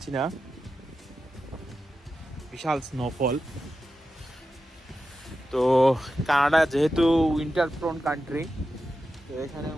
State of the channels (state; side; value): normal; both; correlation 0.91